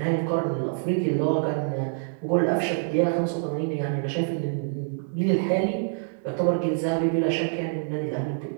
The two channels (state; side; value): silent; left; digital silence